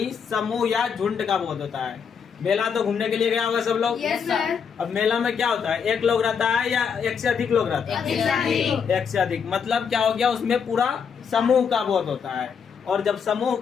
समूह या झुंड का बोध होता है। मेला तो घूमने के लिए गया होगा सब लोग। Yes sir. अब मेला में क्या होता है? एक लोग रहता है या एक से अधिक लोग रहता है? एक से अधिक। मतलब क्या हो गया? उसमें पूरा समूह का बोध होता है। और जब समूह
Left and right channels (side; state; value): right; quieter; 6.7 dB